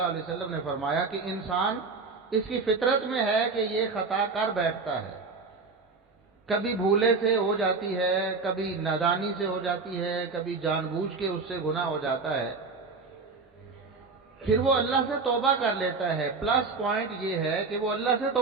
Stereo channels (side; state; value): left; quieter; 4.3 dB